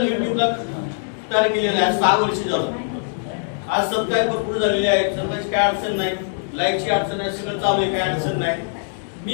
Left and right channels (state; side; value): silent; right; digital silence